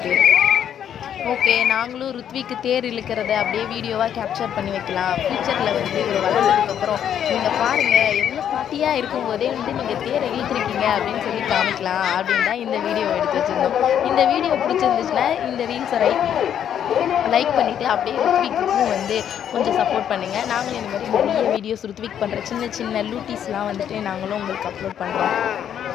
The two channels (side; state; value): right; quieter; 9.4 dB